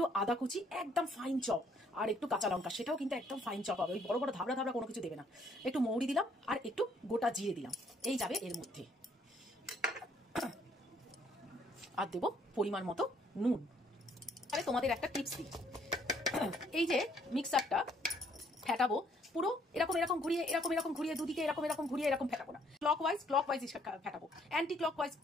আদা কুচি, একদম ফাইন চপ, আর একটু কাঁচা লঙ্কা, সেটাও কিন্তু একদম ফাইন চপ হবে। ওই বড় বড় ধাবড়া ধাবড়া কোনো কিছু দেবে না। একটু মৌরি দিলাম, আর একটু গোটা জিরে দিলাম, এই যাবে এর মধ্যে। আর দেবো পরিমাণ মতো নুন। তাহলে তোমাদের একটা টিপস দিই, এই যে মিক্সারটা ফেটাবো, পুরো এরকম এরকম ঘুরিয়ে, এরকম ঘুরিয়ে, দুদিকে এরকম ঘুরিয়ে এরকম ফেটাবো না। ক্লকওয়াইজ ফেটাবো, অ্যান্টি ক্লকওয়াইজ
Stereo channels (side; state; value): both; normal; correlation 0.66